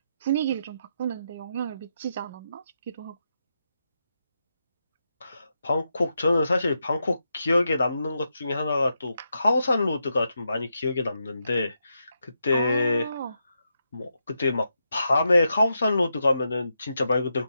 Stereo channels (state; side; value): inverted; both; correlation -0.84